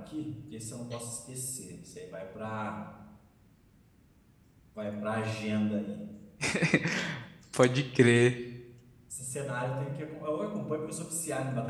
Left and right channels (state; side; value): identical; both; correlation 1.00